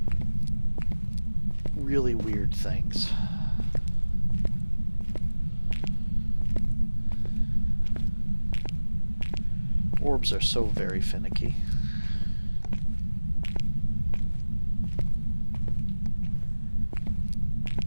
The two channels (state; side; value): inverted; both; correlation -1.00